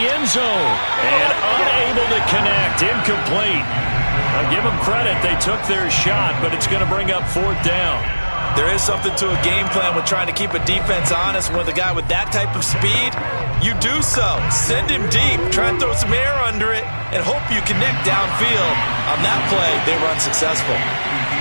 zone. And unable to connect. Incomplete. I'll give them credit. They took their shot, but it's going to bring up 4th down. There is something to a game plan with trying to keep a defense honest. With a guy with that type of speed, you do so. Send him deep. Try and throw some air under it and hope you connect downfield. On that play, they were unsuccessful.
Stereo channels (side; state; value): both; inverted; correlation -1.00